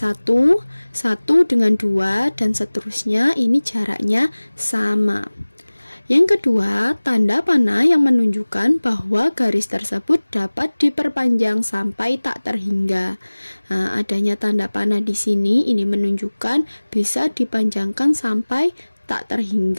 1 dengan 2, dan seterusnya ini jaraknya sama. Yang kedua, tanda panah yang menunjukkan bahwa garis tersebut dapat diperpanjang sampai tak terhingga. Nah, adanya tanda panah di sini ini menunjukkan bisa dipanjangkan sampai tak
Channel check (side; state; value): both; inverted; correlation -1.00